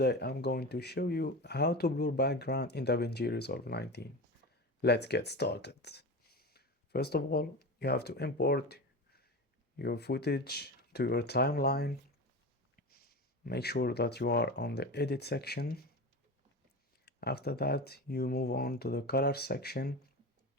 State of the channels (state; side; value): normal; both; correlation 0.26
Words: I'm going to show you how to blur background in DaVinci Resolve 19. Let's get started. First of all, you have to import your footage to your timeline. Make sure that you are on the edit section. After that, you move on to the color section